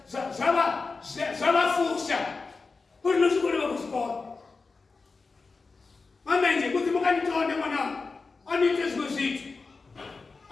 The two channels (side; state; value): right; quieter; 4.2 dB